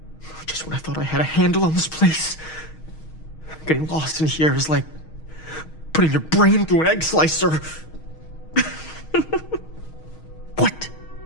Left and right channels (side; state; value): right; late; 6.4 ms